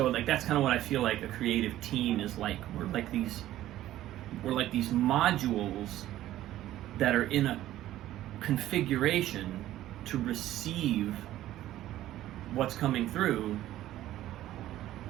that's kind of what I feel like a creative team is like. We're like these modules that are in a configuration to receive what's coming through,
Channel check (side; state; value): left; quieter; 13.9 dB